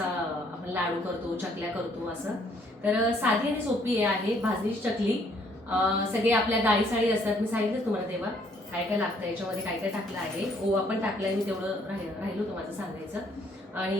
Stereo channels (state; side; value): normal; both; correlation 0.65